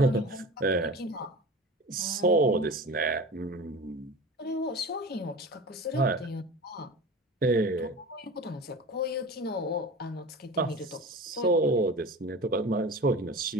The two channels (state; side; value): normal; both; correlation 0.34